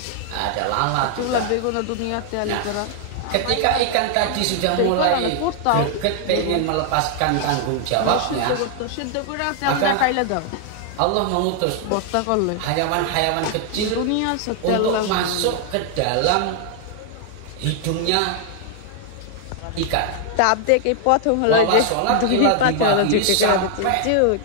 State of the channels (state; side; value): different; both; correlation 0.00